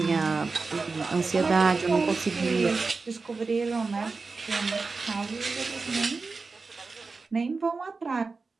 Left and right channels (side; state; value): left; quieter; 4.2 dB